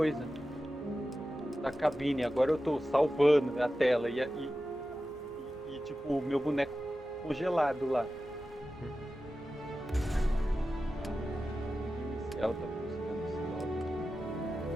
Da cabine. Agora eu tô salvando a tela e tipo, o meu boneco congelado lá. Inicial tá buscando esse log.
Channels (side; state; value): both; normal; correlation 0.93